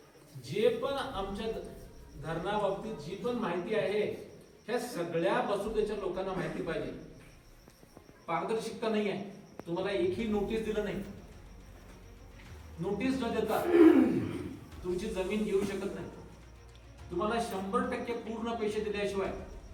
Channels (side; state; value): both; identical; correlation 1.00